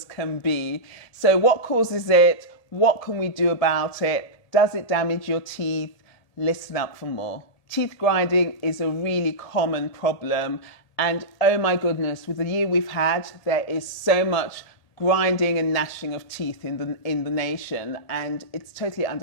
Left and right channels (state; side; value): late; right; 1.8 ms